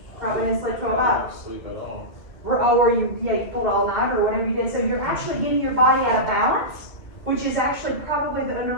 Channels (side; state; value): right; late; 2.0 ms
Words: Probably didn't sleep 12 hours. Sleep at all. Or you pulled all night or whatever you did. So you're actually getting your body out of balance, which is actually probably the